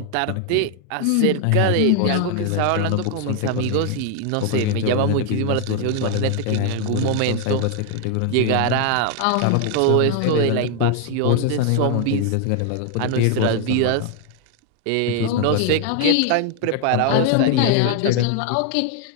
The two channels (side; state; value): both; different; correlation 0.00